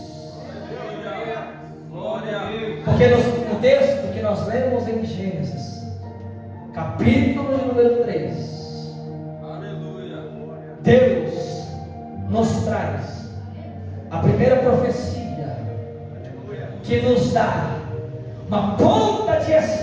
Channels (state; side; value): identical; both; correlation 1.00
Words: Porque no texto que nós lemos em Gênesis, capítulo número 3, Deus nos traz a primeira profecia que nos dá uma ponta de